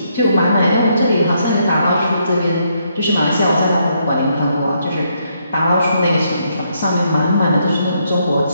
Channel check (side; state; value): both; inverted; correlation -0.75